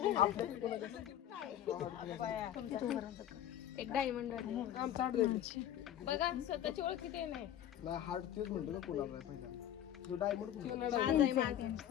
एक डायमंड बघा स्वतःची ओळख किती नाही हार्ट तेच म्हणतो ना कोणाला पहिला जो डायमंड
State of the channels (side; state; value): right; quieter; 11.2 dB